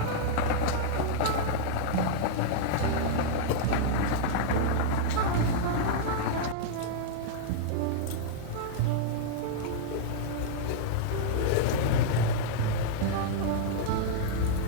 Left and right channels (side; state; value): both; different; correlation -0.01